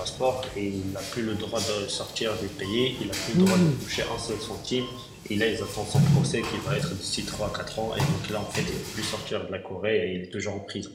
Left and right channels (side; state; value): both; identical; correlation 1.00